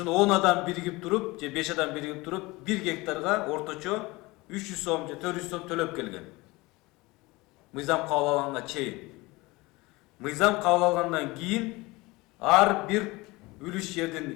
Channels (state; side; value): quieter; right; 22.3 dB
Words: 10 адам биригип туруп же 5 адам биригип туруп 1 гектарга орточо 300 сом же 400 сом төлөп келген. Мыйзам кабыл алганга чейин. Мыйзам кабыл алгандан кийин ар бир үлүш